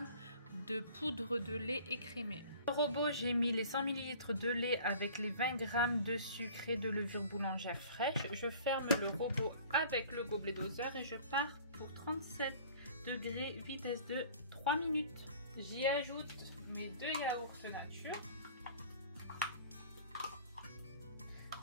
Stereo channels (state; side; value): inverted; both; correlation -0.48